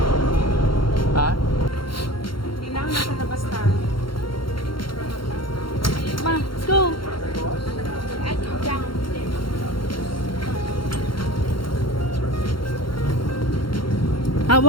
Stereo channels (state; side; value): late; right; 0.73 ms